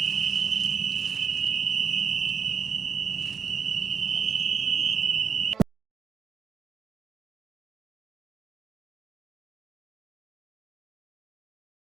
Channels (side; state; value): left; quieter; 6.2 dB